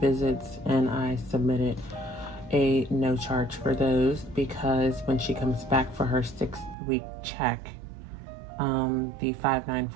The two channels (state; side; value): drops out; left; at 6.8 s